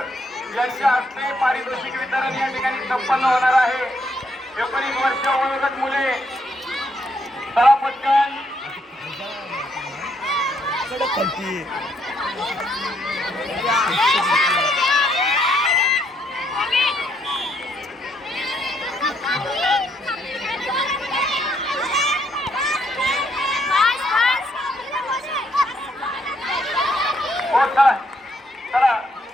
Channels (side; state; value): both; normal; correlation 0.72